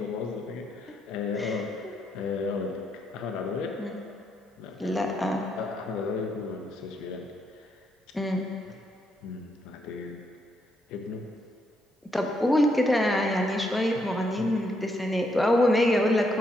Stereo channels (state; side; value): normal; both; correlation 0.77